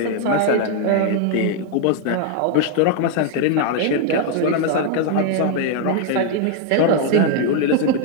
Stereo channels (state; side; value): different; both; correlation 0.00